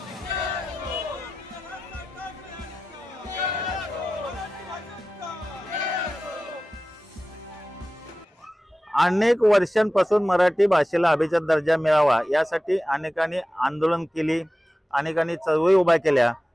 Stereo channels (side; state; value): both; normal; correlation 0.95